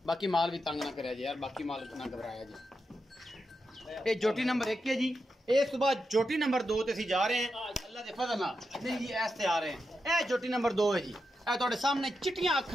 बाकी माल भी तंग ना करे जी यार, बाकी माल ना घबराया जी। ये झोटी नंबर 1 है जी। इस सुबह झोटी नंबर 2 ते असीं जा रहे हैं अल्लाह के फजल नाल। नहीं जी ऐसे आ रहे हैं। यह झोटी नंबर 2 है जी। यह तुहाडे सामने चिट्टियां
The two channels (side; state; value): both; normal; correlation 0.87